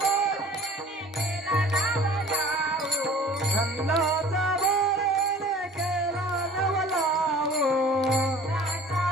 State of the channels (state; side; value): normal; both; correlation 0.47